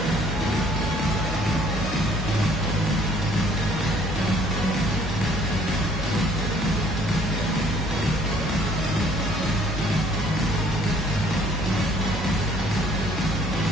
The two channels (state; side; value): normal; both; correlation 0.59